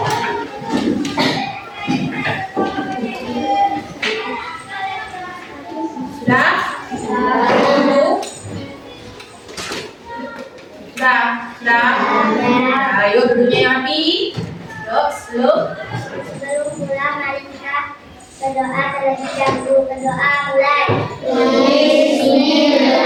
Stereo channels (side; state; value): both; identical; correlation 1.00